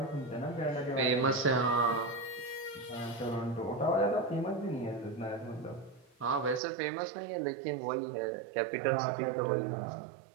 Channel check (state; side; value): drops out; left; at 6.6 s